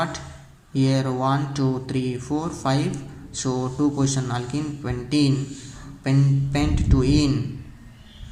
here 1 2 3 4 5, so 2 position alkene, pentene, pent 2 ene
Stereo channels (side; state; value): both; identical; correlation 1.00